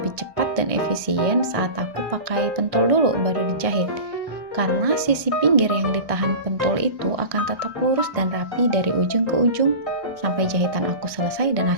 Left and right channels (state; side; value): late; left; 1.1 ms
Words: cepat dan efisien saat aku pakai pentul dulu baru dijahit. Karena sisi pinggir yang ditahan pentul itu akan tetap lurus dan rapi dari ujung ke ujung sampai jahitan aku selesai dan